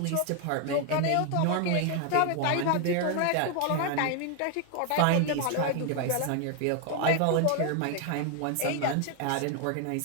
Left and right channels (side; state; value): both; different; correlation 0.00